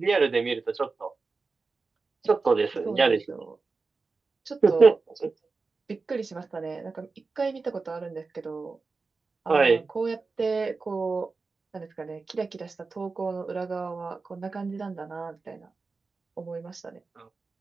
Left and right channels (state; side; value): quieter; left; 4.2 dB